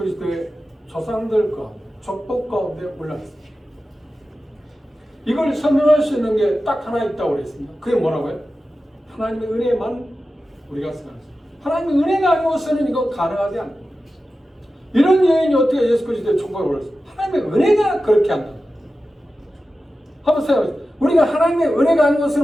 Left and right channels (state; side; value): normal; both; correlation 0.93